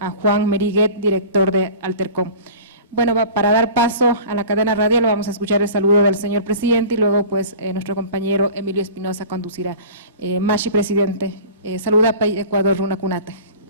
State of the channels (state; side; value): inverted; both; correlation -0.40